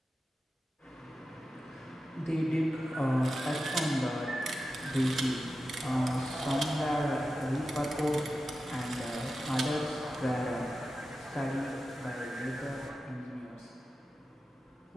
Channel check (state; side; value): normal; both; correlation 0.92